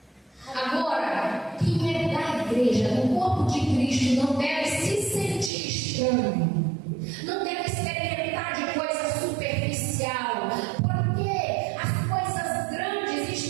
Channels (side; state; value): left; drops out; at 5.5 s